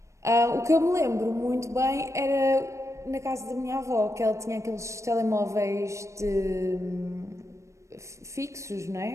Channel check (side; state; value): left; late; 0.15 ms